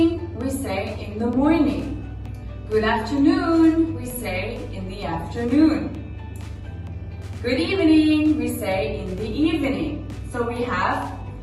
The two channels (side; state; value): both; identical; correlation 1.00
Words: we say in the morning. Good afternoon, we say in the afternoon. Good evening, we say in the evening. So we have